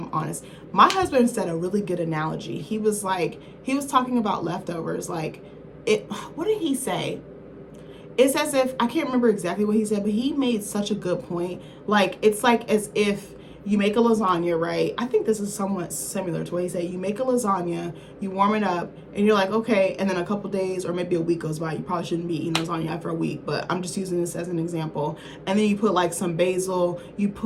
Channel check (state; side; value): identical; both; correlation 1.00